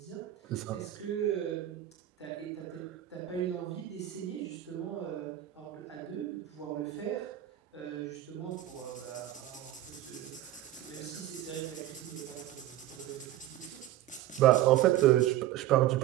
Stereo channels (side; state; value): left; quieter; 13.6 dB